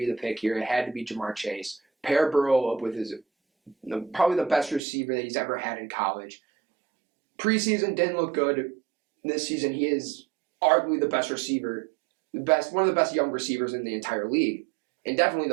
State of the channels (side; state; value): left; drops out; at 4.8 s